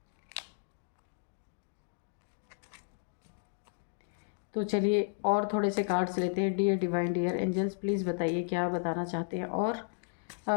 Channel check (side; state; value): right; silent; digital silence